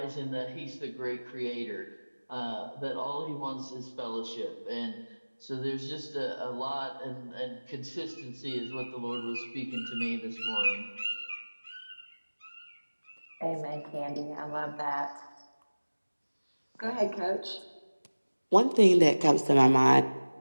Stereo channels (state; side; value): inverted; both; correlation -1.00